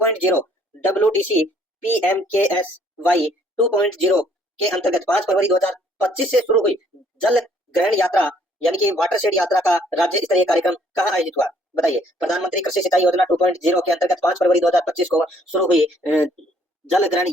WDC PMKSY 2.0 के अंतर्गत 5 फरवरी 2025 से शुरू हुई जल ग्रहण यात्रा यानी कि वाटर शेड यात्रा का राज्य स्तरीय कार्यक्रम कहाँ आयोजित हुआ? बताइए, प्रधानमंत्री कृषि सिंचाई योजना 2.0 के अंतर्गत 5 फरवरी 2025 को शुरू हुई जल ग्रहण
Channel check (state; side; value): normal; both; correlation 0.63